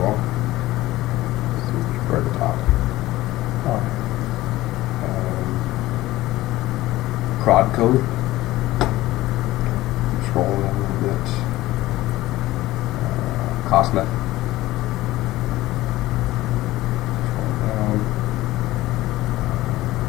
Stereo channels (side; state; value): right; quieter; 17.1 dB